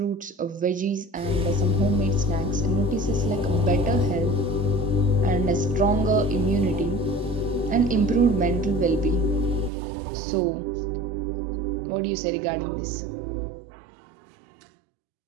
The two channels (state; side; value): drops out; left; at 9.7 s